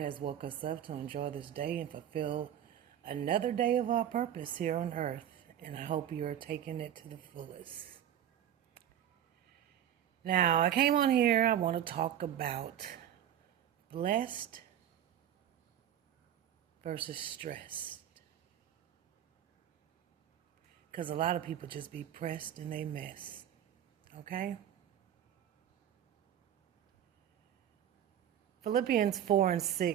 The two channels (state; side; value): quieter; left; 10.3 dB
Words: has woke us up to enjoy this day and fulfill another day of our purpose here on earth. And I hope you're taking it to the fullest. Now, I came on here, I want to talk about blessed versus stressed. Because a lot of people just be pressed and they mess. Okay? Philippians